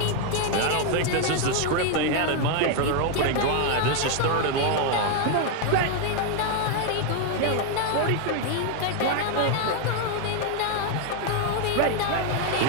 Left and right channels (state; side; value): different; both; correlation 0.01